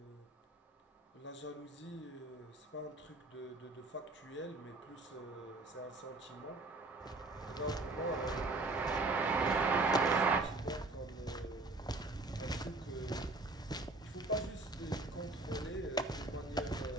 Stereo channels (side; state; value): left; quieter; 3.1 dB